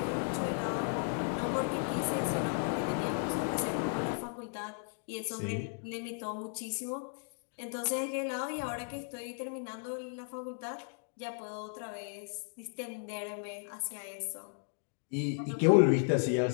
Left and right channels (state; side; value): silent; right; 54 dB below the other